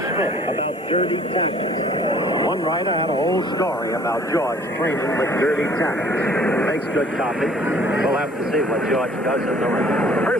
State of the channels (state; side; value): normal; both; correlation 0.54